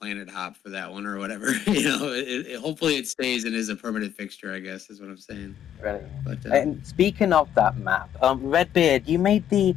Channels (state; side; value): quieter; right; 10.2 dB